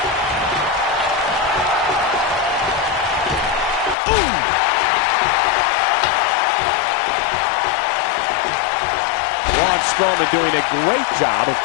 Braun Strowman doing a great job of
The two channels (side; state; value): right; drops out; at 4.0 s